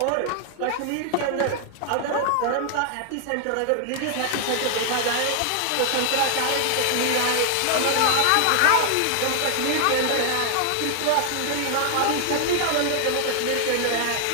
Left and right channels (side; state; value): both; different; correlation 0.00